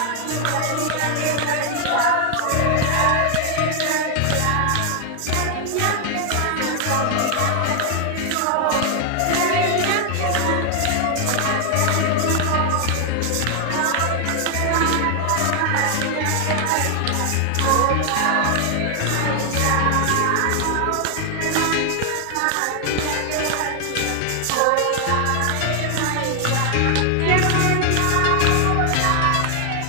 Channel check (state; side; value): different; both; correlation 0.00